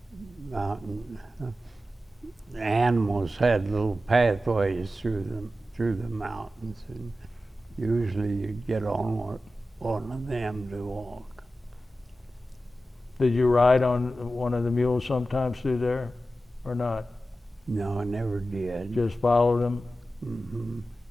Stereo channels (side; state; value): both; normal; correlation 0.93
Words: The animals had little pathways through the mountains, and usually you'd get on one of them to walk. Did you ride on one of the mules sometimes through there, or not? No, I never did. Just followed them? Mm-hmm.